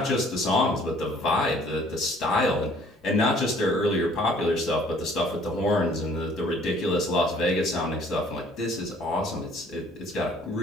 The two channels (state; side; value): normal; both; correlation 0.57